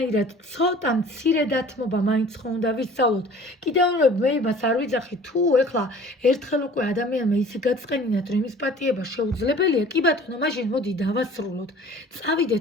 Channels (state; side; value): normal; both; correlation 0.48